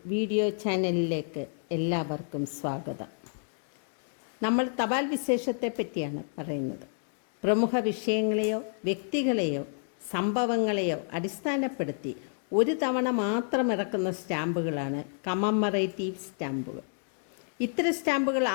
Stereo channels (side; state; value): right; silent; digital silence